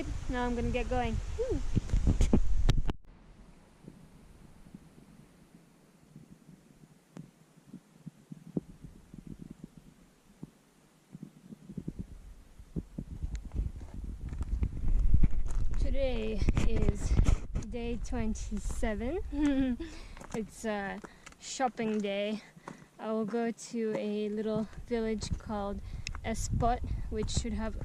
Now I'm gonna get going. Woo. Today is day 27. It's shopping day. I will go to a little village called Espot, which should have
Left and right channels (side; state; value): both; identical; correlation 1.00